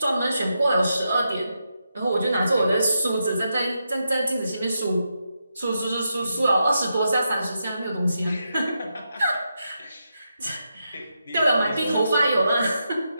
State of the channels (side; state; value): both; inverted; correlation -0.85